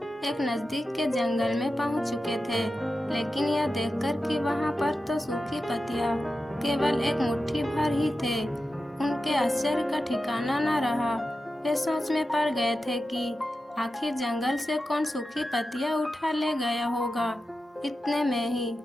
एक नजदीक के जंगल में पहुंच चुके थे, लेकिन यह देखकर कि वहां पर तो सूखी पत्तियां केवल एक मुट्ठी भर ही थे, उनके आश्चर्य का ठिकाना न रहा। वे सोच में पड़ गए थे कि आखिर जंगल से कौन सूखी पत्तियां उठा ले गया होगा। इतने में ही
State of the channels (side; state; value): both; normal; correlation 0.92